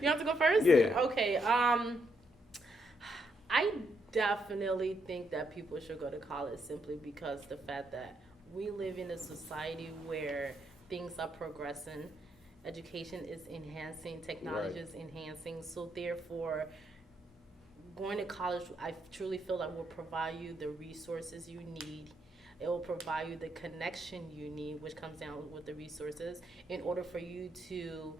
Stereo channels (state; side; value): normal; both; correlation 0.77